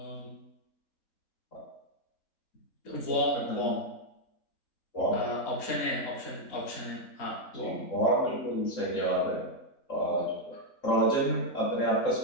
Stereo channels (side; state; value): right; late; 3.8 ms